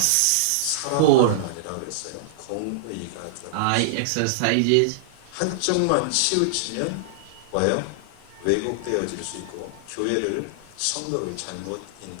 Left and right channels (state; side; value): different; both; correlation -0.01